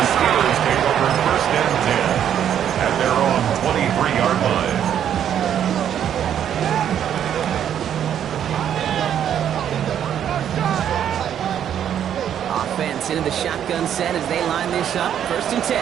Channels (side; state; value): left; quieter; 9.6 dB